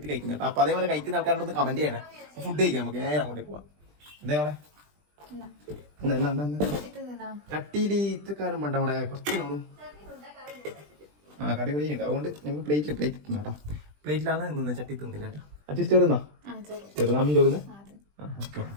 കഴിക്കുന്നത് കേട്ടോ. അപ്പൊ അതേപോലെ കഴിക്കുന്ന ആൾക്കാരോട് കമന്റ് ചെയ്യണേ. ഫുഡ് കഴിക്കാം. നമുക്ക് നേരെ അങ്ങോട്ടേക്ക് പോവാം. എന്തേപോലെ ചട്ടിയിൽ ഇത്രക്കാരും വേണ്ട. അവിടെ കുറച്ച് നോളും കറി കൂടി ഉണ്ട്. അതുകൊണ്ട് ഞങ്ങൾ പ്ലേറ്റ് തിന്നു കേട്ടോ. പ്ലേറ്റിലാണ് നിന്ന് ചട്ടി തിന്നില്ല കേട്ടോ. അച്ഛൻ ചോറുന്നാ ചെറുതാമീൻ ചോറുന്ന്. ഓക്കെ.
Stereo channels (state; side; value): late; left; 20 ms